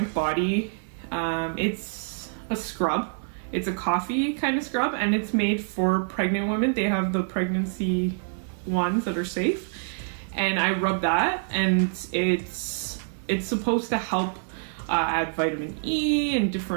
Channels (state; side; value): silent; left; 61 dB below the other